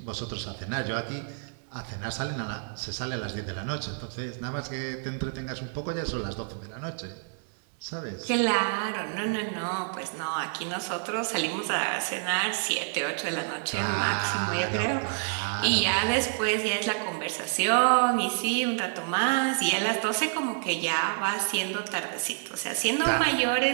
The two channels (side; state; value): left; silent; digital silence